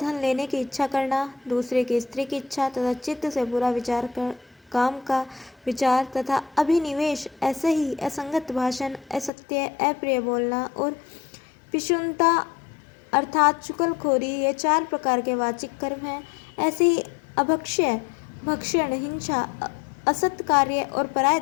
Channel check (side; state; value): right; drops out; at 9.3 s